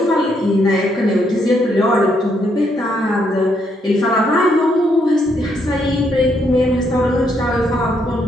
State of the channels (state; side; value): normal; both; correlation 0.74